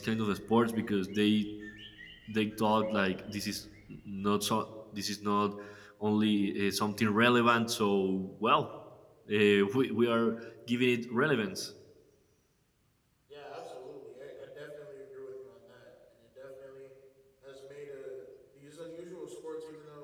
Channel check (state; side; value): identical; both; correlation 1.00